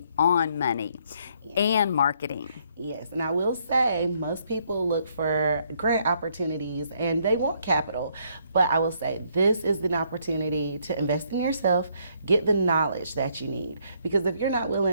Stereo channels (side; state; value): both; inverted; correlation -0.70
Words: on money and marketing. Yes, and I will say most people look for grant opportunities and they want capital, but I will say this is an opportunity to invest in yourself, get the knowledge that you need. Because if you're not